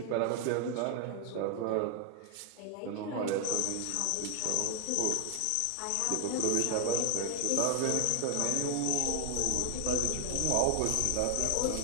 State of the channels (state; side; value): different; both; correlation 0.01